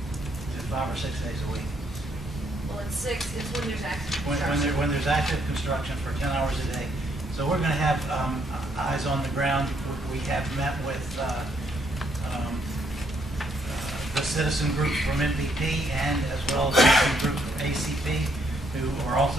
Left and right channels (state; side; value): normal; both; correlation 0.72